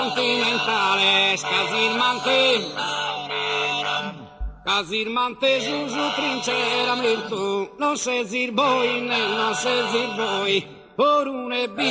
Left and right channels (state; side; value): identical; both; correlation 1.00